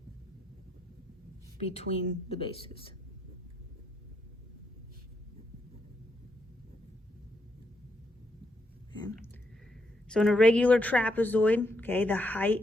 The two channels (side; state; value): both; normal; correlation 0.79